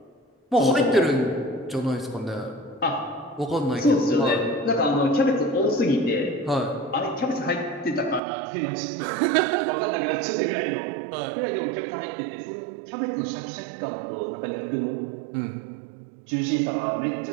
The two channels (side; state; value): left; drops out; at 8.2 s